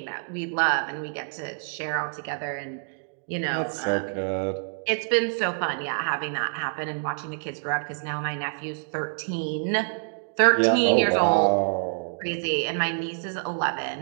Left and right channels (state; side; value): silent; left; 60 dB below the other